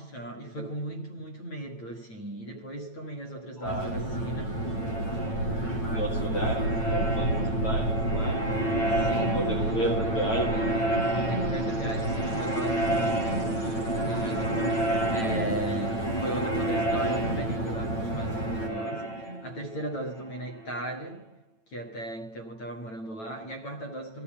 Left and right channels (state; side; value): late; right; 9.0 ms